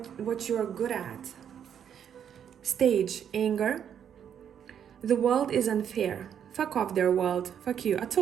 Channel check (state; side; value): quieter; left; 8.7 dB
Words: you're good at. Stage, anger. The world is unfair. Fuck off their world. Fuck you. I